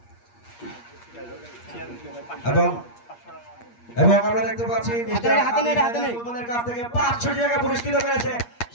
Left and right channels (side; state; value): right; late; 8.5 ms